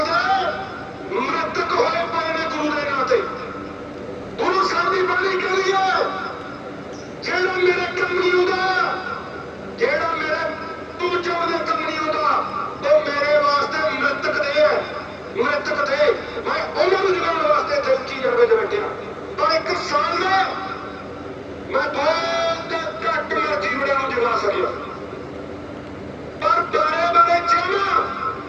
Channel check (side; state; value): both; identical; correlation 1.00